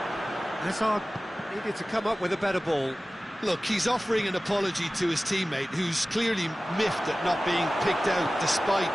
Hazard needed to come up with a better ball. Look, he's offering an apology to his teammate, who's clearly miffed at not being picked out despite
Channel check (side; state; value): both; normal; correlation 0.97